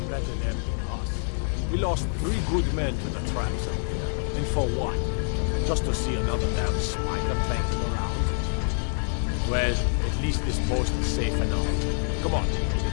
Better them than us. We lost 3 good men to the traps out there. And for what? Just to see another damn spider planking around? Well, at least this post is safe enough. Come on,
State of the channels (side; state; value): right; silent; 61 dB below the other